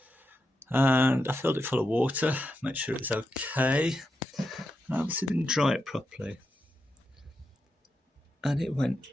and I filled it full of water, make sure it was okay, and I obviously didn't dry it properly, and it went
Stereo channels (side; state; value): both; normal; correlation 0.86